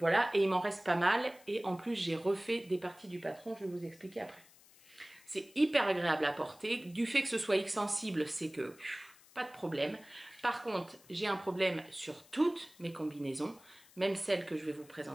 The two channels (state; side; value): noise; left; hiss, 25 dB below the sound